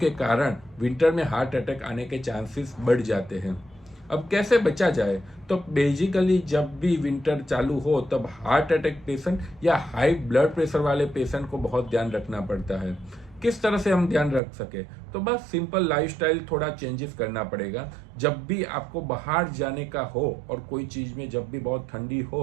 कारण विंटर में हार्ट अटैक आने के चांसेस बढ़ जाते हैं। अब कैसे बचा जाए? तो बेसिकली जब भी विंटर चालू हो तब हार्ट अटैक पेशेंट या हाई ब्लड प्रेशर वाले पेशेंट को बहुत ध्यान रखना पड़ता है। किस तरह से हम ध्यान रख सके? तो बस सिंपल लाइफस्टाइल थोड़ा चेंजेस करना पड़ेगा। जब भी आपको बाहर जाने का हो और कोई चीज़ में जब भी बहुत ठंडी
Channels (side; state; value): left; drops out; at 14.4 s